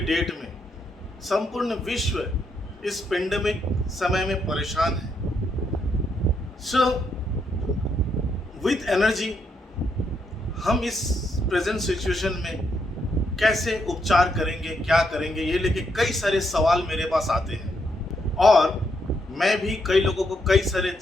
डेट में संपूर्ण विश्व इस पेंडेमिक समय में परेशान है। सो विथ एनर्जी हम इस प्रेजेंट सिचुएशन में कैसे उपचार करेंगे, क्या करेंगे, ये लेके कई सारे सवाल मेरे पास आते हैं और मैं भी कई लोगों को कई सारे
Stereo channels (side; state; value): both; normal; correlation 0.78